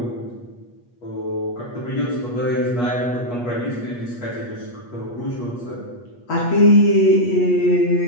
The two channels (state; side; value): late; right; 8.3 ms